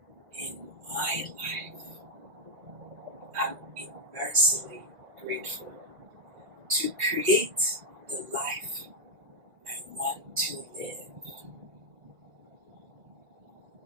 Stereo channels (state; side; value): late; left; 1.8 ms